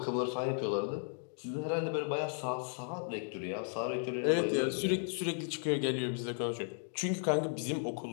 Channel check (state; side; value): silent; right; digital silence